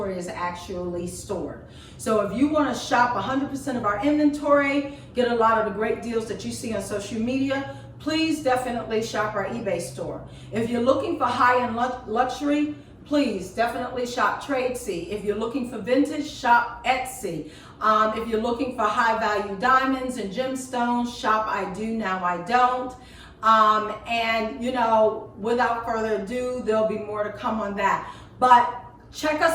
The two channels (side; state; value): both; identical; correlation 1.00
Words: is actually stored. So if you want to shop 100% of our inventory, get a lot of the great deals that you see on social media, please definitely shop our eBay store. If you're looking for high-end luxury, please definitely shop Tradesy. If you're looking for vintage, shop Etsy. If you're looking for high-value diamonds and gemstones, shop I Do Now I Don't. And you know, without further ado, there'll be more to come on that. But check